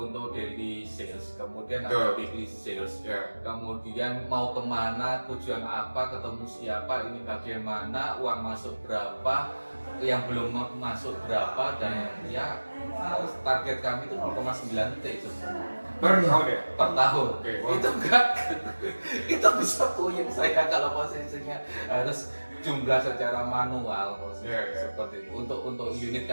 daily sales, kemudian ada weekly sales, kemudian mau kemana, tujuan apa, ketemu siapa, ini bagaimana, uang masuk berapa, yang belum masuk berapa, dan ya target kami itu 0,9 T per tahun ya? Per tahun. Itu enggak, itu bisa puyeng saya kalau posisinya harus jumlah secara manual posisi Yeah. seperti itu untuk unit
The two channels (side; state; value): both; inverted; correlation -1.00